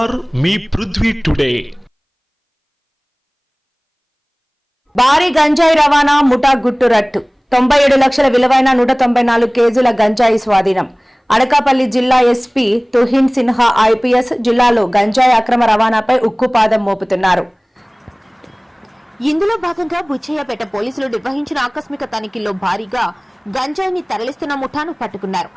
మీ పృథ్వీ టుడే. భారీ గంజాయి రవాణా ముఠా గుట్టు రట్టు. 97 లక్షల విలువైన 194 కేజీల గంజాయి స్వాధీనం. అనకాపల్లి జిల్లా ఎస్పీ తుహిన్ సిన్హా ఐపీఎస్ జిల్లాలో గంజాయి అక్రమ రవాణాపై ఉక్కుపాదం మోపుతున్నారు. ఇందులో భాగంగా బుచ్చయ్యపేట పోలీసులు నిర్వహించిన ఆకస్మిక తనిఖీల్లో భారీగా గంజాయిని తరలిస్తున్న ముఠాను పట్టుకున్నారు.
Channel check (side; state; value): both; identical; correlation 1.00